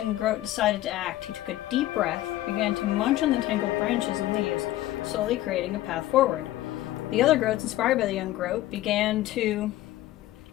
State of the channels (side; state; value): right; quieter; 15.2 dB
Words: groat decided to act. He took a deep breath, began to munch on the tangled branches and leaves, slowly creating a path forward. The other groats, inspired by the young groat, began to